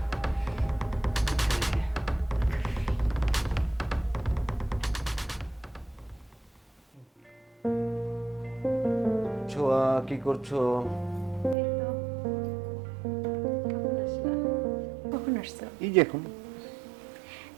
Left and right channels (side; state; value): left; drops out; at 11.6 s